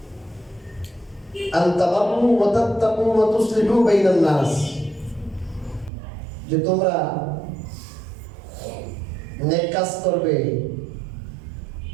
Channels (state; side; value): drops out; left; at 5.9 s